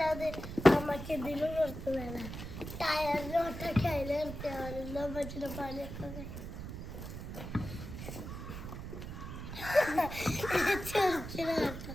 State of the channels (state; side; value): noise; right; rumble, 8 dB below the sound